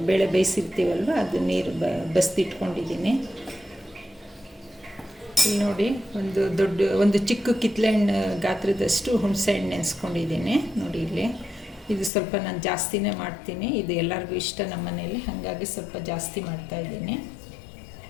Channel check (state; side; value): drops out; right; at 12.1 s